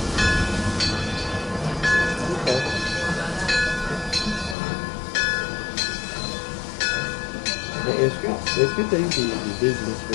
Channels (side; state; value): right; drops out; at 4.5 s